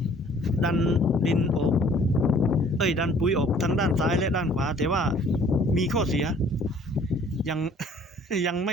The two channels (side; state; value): both; normal; correlation 0.56